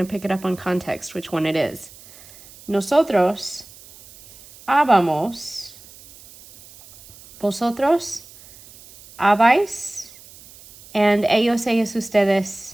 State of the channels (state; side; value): noise; right; hiss, 22 dB below the sound